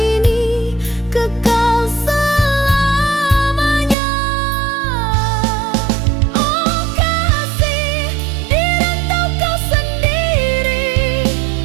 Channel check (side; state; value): left; drops out; at 4.0 s